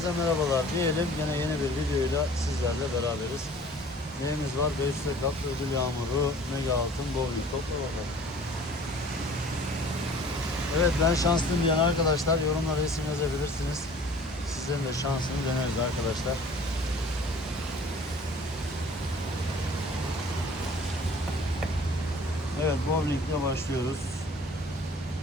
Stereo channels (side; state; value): both; normal; correlation 0.49